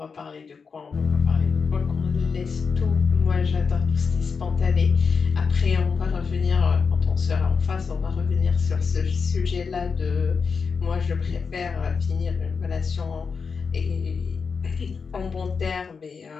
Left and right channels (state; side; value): quieter; right; 5.4 dB